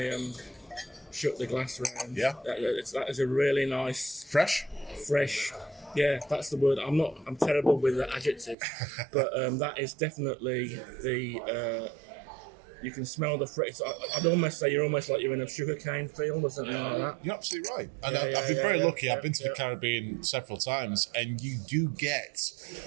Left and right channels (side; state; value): left; drops out; at 8.6 s